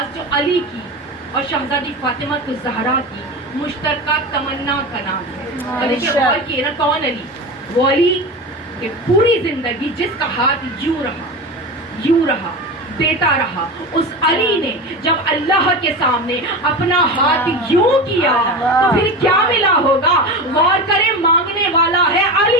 جو علی کی اور شہزادی فاطمہ الزہرا کی مشترکہ تمنا کا نام ہے. اور دیکھیں غور کیے نا, کون علی؟ وہ علی کہ پوری زندگی جس کا ہاتھ یوں رہا دیتا رہا, اس علی نے جب اللہ کے سامنے اپنا ہاتھ یوں کیا تو پھر کیا ملا ہوگا؟ غور کریں, مانگنے والا ہے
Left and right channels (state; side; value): normal; both; correlation 0.25